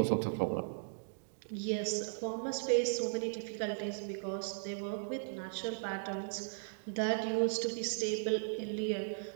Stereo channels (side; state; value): left; silent; digital silence